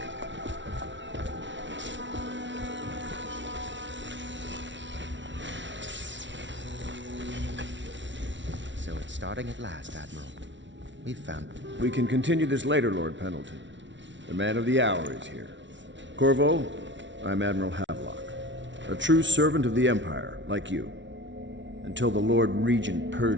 So it's starting at last, Admiral. We've found... We can continue this later, Lord Pendleton. The man of the hour is here. Corvo, I'm Admiral Havelock. A true servant of the Empire, like you. Until the Lord Regent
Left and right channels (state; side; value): late; left; 0.54 ms